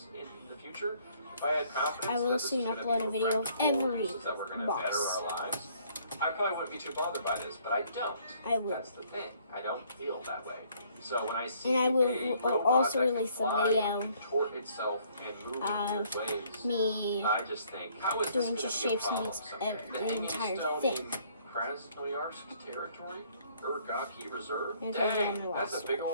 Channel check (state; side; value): inverted; both; correlation -0.63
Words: in the future, if I had confidence I will that this soon was gonna upload be a video of practical every uses that were gonna box. better our lives, I probably wouldn't be too bothered by this, but I don't. I will. That's the thing. I don't feel that way. So when I see And I will a robot also that can release a fly video and contort itself and move in weird ways, me I just think, how is doing this Just gonna be a Shave Some problem Beats someday? the entire Stone thing. in Krasnoyarsk territory? Urgaki Reserve? Here's what I Dang, did that's a last big